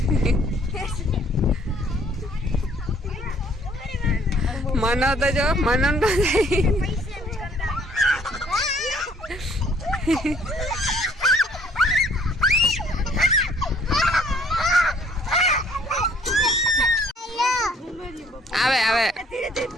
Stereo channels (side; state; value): both; normal; correlation 0.61